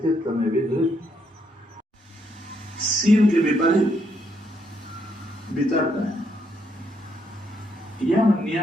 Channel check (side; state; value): both; normal; correlation 0.75